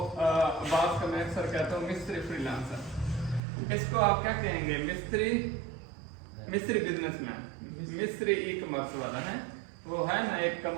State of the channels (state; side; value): drops out; left; at 3.4 s